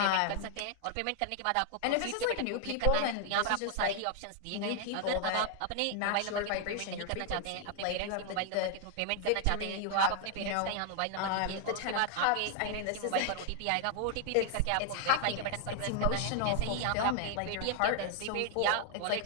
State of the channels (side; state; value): both; different; correlation 0.00